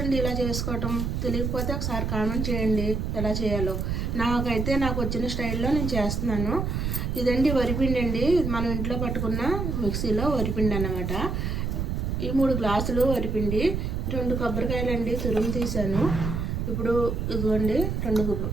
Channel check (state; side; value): noise; right; rumble, 1 dB below the sound